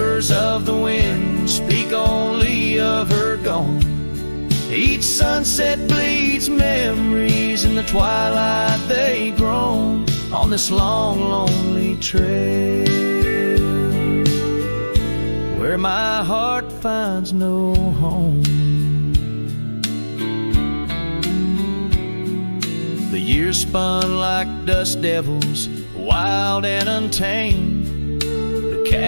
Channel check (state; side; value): inverted; both; correlation -1.00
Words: of the wind speak only of her gone. Each sunset bleeds memories, in the twilight they groan on this long, lonely trail, where my heart finds no home. The years spun like dust devils, wild and untamed. The